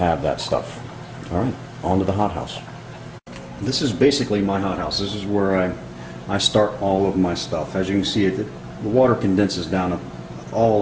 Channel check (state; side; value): identical; both; correlation 1.00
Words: that stuff. Alright, on to the hothouse. This is basically my hothouse. This is where I start all of my stuff. As you can see, the water condenses down all